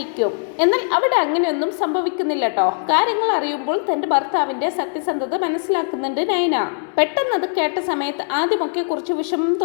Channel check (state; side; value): silent; right; 66 dB below the other